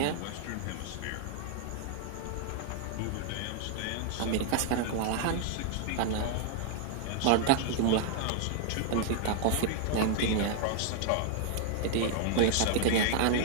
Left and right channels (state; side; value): different; both; correlation 0.00